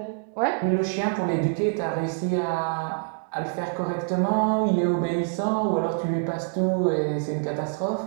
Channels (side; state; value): left; silent; digital silence